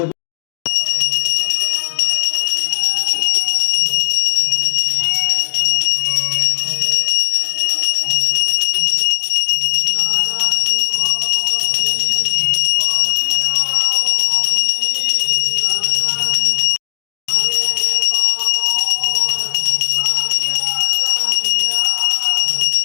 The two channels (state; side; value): silent; right; digital silence